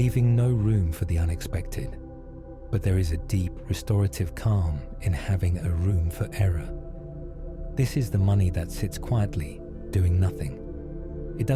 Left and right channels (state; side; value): identical; both; correlation 1.00